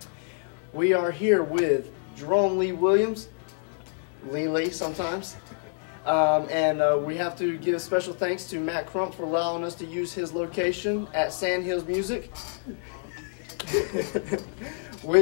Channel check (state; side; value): silent; right; digital silence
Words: We are here with Jerome Lee Williams, Lili sometimes, and we have to give special thanks to Matt Crump for allowing us to use his location at Sandhills Music,